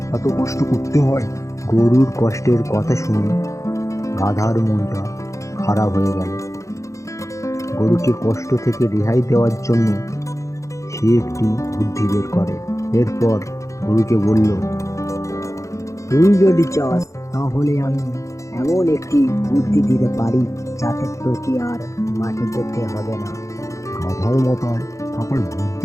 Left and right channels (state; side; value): late; right; 0.15 ms